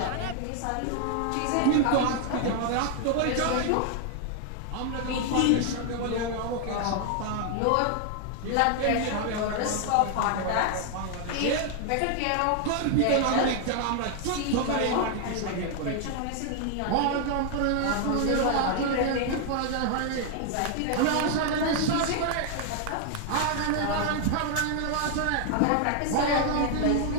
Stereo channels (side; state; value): both; different; correlation 0.00